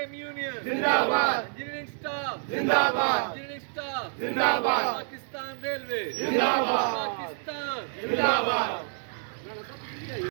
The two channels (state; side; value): silent; left; 59 dB below the other